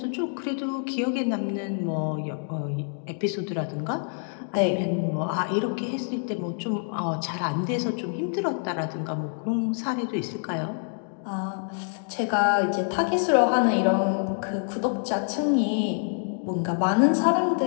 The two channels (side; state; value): right; silent; 55 dB below the other